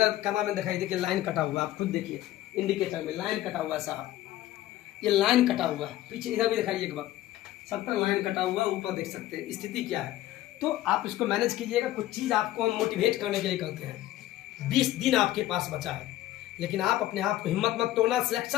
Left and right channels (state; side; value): quieter; right; 14.7 dB